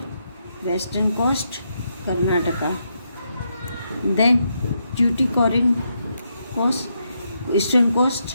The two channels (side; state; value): both; inverted; correlation -0.81